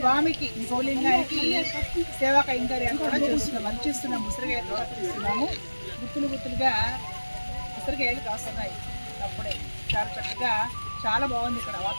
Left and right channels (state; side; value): inverted; both; correlation -1.00